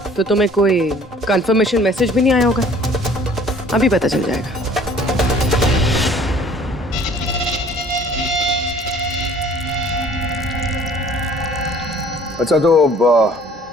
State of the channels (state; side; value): normal; both; correlation 0.53